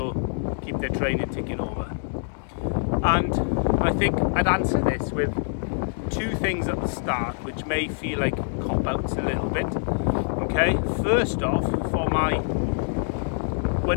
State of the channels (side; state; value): right; silent; digital silence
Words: keep their training ticking over. And I think I'd answer this with two things at the start which may feel like cop-outs a little bit. Okay, first off, we're